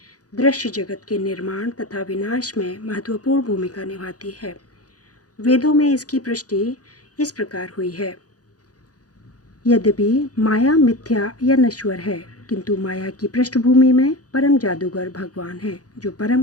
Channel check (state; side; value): late; right; 0.67 ms